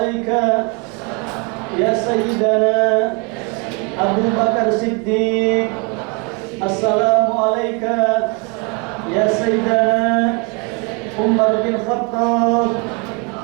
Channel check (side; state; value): left; quieter; 31.9 dB